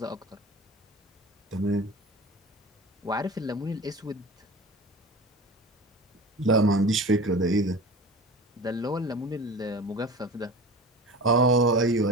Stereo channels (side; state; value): both; normal; correlation 0.35